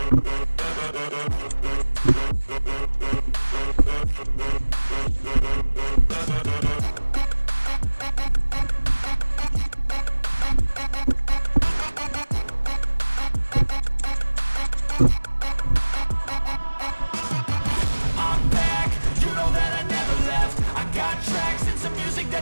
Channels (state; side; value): inverted; both; correlation -1.00